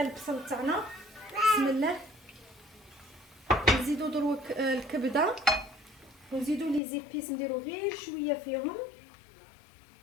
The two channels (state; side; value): drops out; right; at 6.8 s